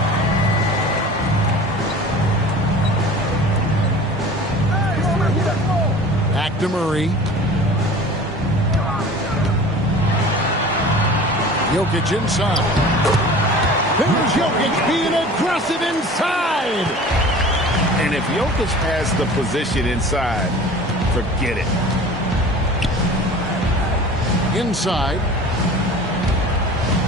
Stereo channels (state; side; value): normal; both; correlation 0.41